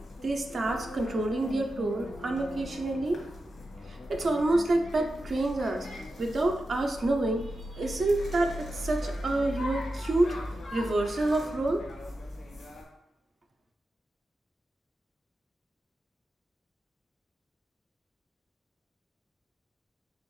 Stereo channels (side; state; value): both; normal; correlation 0.91